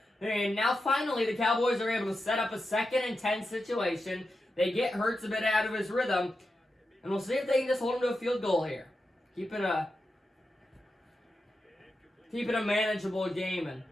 And now finally the Cowboys are able to set up a 2nd and 10 situation. They get Hurts a bit out of his rhythm. And we'll see if they can just hold him to a field goal here. Keep it a manageable game and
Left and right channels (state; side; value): normal; both; correlation 0.90